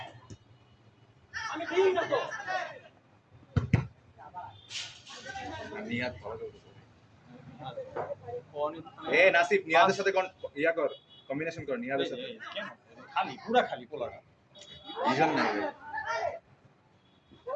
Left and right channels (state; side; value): identical; both; correlation 1.00